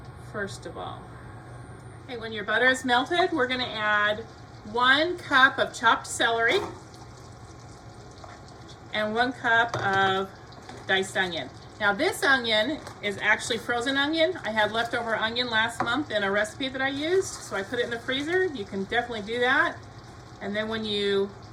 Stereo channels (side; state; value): both; identical; correlation 1.00